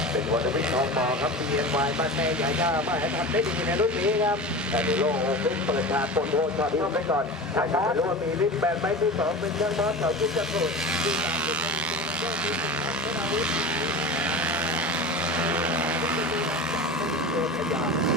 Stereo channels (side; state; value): both; normal; correlation 0.31